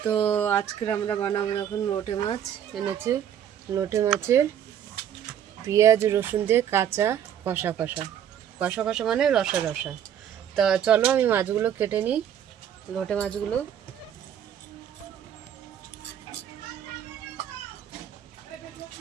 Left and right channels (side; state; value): left; quieter; 9.5 dB